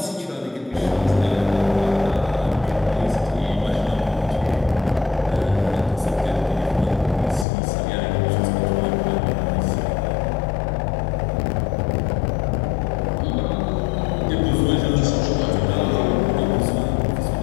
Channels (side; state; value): right; drops out; at 7.5 s